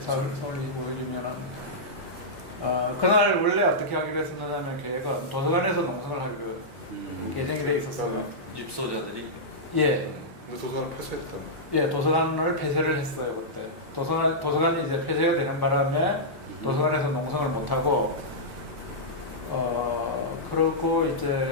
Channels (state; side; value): normal; both; correlation -0.12